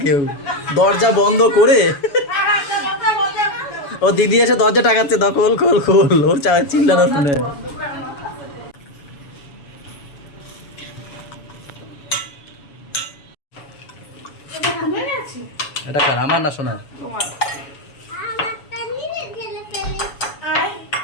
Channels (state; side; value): late; right; 7.1 ms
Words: কেউ, দরজা বন্ধ করে। ও দিদি এসে দরজা টাকাচ্ছে, দাও খোল খোল খোল, ওর চিল্লানো শুনে। এটা কার, আমার না সোনার? আমারটা নিয়ে ঢেলে ফেলে।